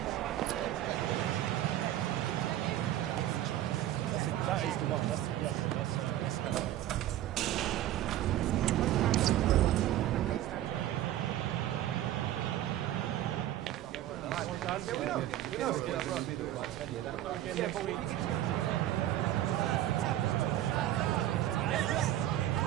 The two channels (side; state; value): left; quieter; 13.1 dB